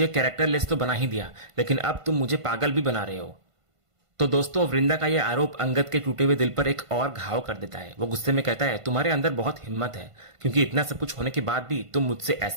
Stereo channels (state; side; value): late; left; 1.5 ms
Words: कैरेक्टरलेस तो बना ही दिया, लेकिन अब तुम मुझे पागल भी बना रहे हो। तो दोस्तों, वृंदा का यह आरोप अंगद के टूटे हुए दिल पर एक और घाव कर देता है। वो गुस्से में कहता है, तुम्हारे अंदर बहुत हिम्मत है, क्योंकि इतना सब कुछ होने के बाद भी तुम मुझसे